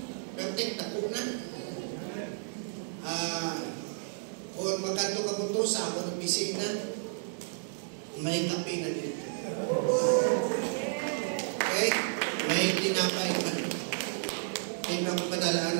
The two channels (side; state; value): left; silent; digital silence